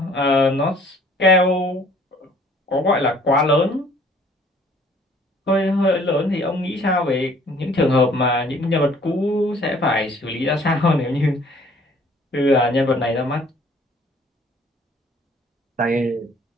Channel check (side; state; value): both; normal; correlation 0.57